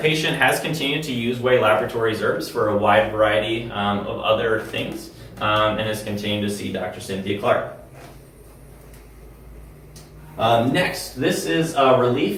patient has continued to use Way Laboratories herbs for a wide variety of other things, and has continued to see Dr. Cynthia Clark. Next, this is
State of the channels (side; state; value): both; identical; correlation 1.00